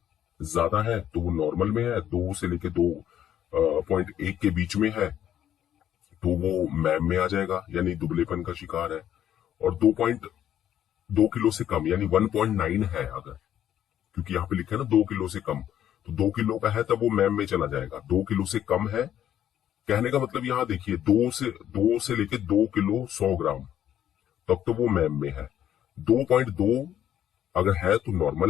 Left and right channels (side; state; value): right; quieter; 10.7 dB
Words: ज्यादा है तो वो नॉर्मल में है, 2 से लेके 2.1 के बीच में है तो वो मैम में आ जाएगा, यानी दुबलेपन का शिकार है। और 2.2 किलो से कम, यानी 1.9 है अगर, क्योंकि यहाँ पे लिखा है ना 2 किलो से कम, तो 2 किलो का है तब वो मैम में चला जाएगा। 2 किलो से कम है कहने का मतलब यहाँ देखिए, दो से लेके 2 किलो 100 ग्राम तब तो वो मैम में है। 2.2 अगर है तो